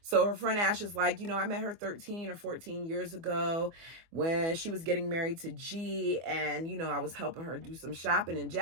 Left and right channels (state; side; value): late; left; 24 ms